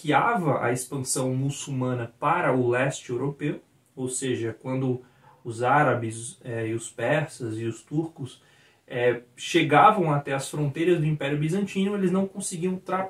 a expansão muçulmana para o leste europeu, ou seja, quando os árabes e os persas e os turcos chegavam até as fronteiras do Império Bizantino, eles não conseguiam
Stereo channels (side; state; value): both; identical; correlation 1.00